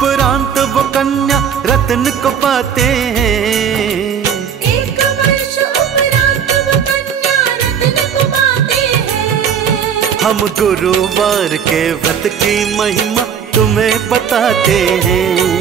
वो कन्या रत्न को पाते हैं। एक वर्ष उपरांत वो कन्या रत्न को पाते हैं। हम गुरुवार के व्रत की महिमा तुम्हें बताते हैं।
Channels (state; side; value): quieter; left; 7.8 dB